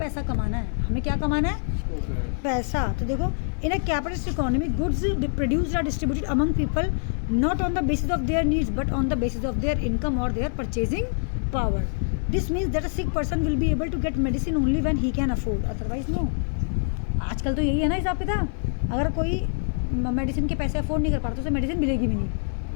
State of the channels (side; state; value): right; silent; digital silence